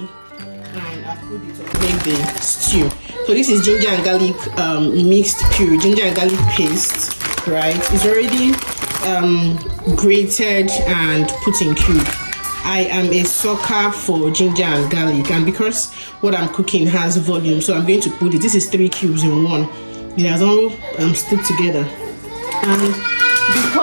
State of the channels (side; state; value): both; inverted; correlation -1.00